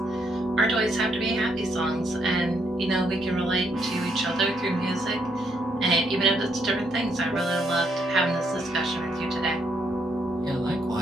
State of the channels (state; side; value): normal; both; correlation 0.74